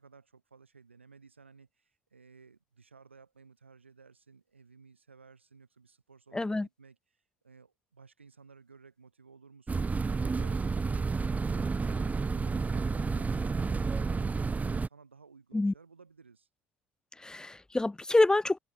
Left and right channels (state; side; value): normal; both; correlation 0.92